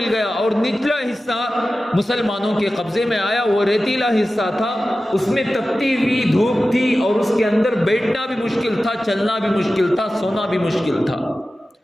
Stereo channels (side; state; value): both; normal; correlation 0.95